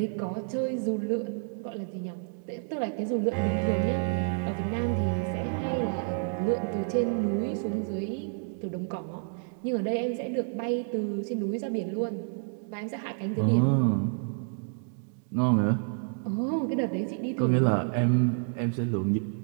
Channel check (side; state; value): left; silent; 58 dB below the other